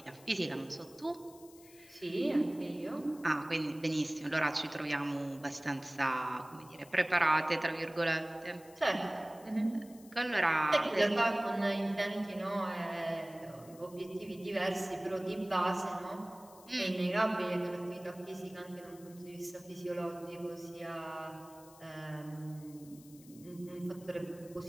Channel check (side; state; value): left; noise; hiss, 23 dB below the sound